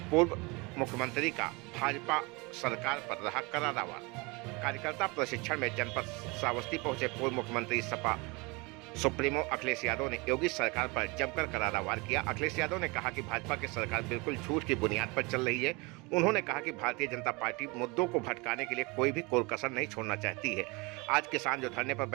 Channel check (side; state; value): left; quieter; 26.7 dB